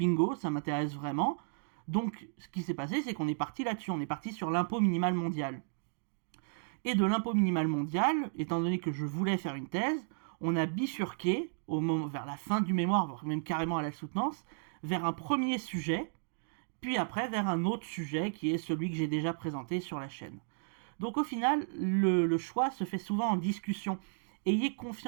ça m'intéresse vraiment. Donc ce qui s'est passé, c'est qu'on est parti là-dessus, on est parti sur l'impôt minimal mondial. Et de l'impôt minimal mondial, étant donné que je voulais faire une thèse, on a bifurqué, vers la fin du mémoire, voire même carrément à la soutenance, vers un premier sujet, puis après vers un autre sujet qui est celui que j'ai déjà présenté sur la chaîne. Donc au final, le choix se fait souvent en discussion. Ayez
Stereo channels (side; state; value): left; silent; digital silence